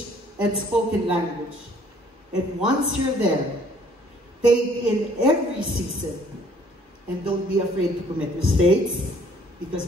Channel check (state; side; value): normal; both; correlation 0.59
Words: and spoken language. And once you're there, take in every season and don't be afraid to commit mistakes,